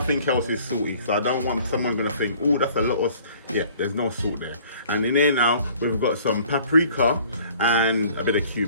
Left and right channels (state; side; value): inverted; both; correlation -0.53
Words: else is salty. So I don't want someone gonna think, oh, that's a lot of, yeah, there's no salt there. And in there now, we've got some paprika and a bit of